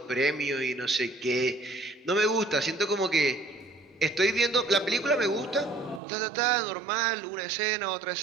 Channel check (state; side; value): drops out; left; at 6.0 s